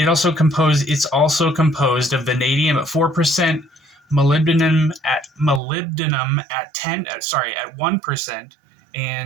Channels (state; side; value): drops out; left; at 5.6 s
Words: composed of vanadium at 4%, molybdenum at 1%,